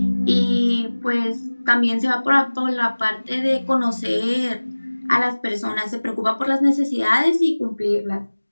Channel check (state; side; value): inverted; both; correlation -1.00